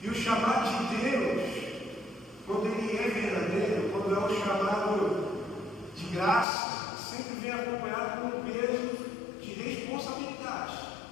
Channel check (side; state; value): right; drops out; at 6.5 s